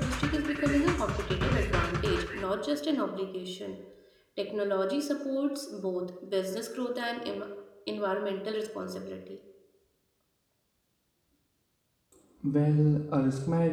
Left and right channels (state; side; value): identical; both; correlation 1.00